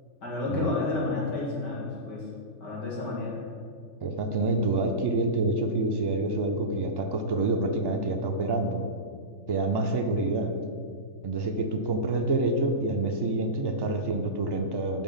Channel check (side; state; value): right; late; 3.3 ms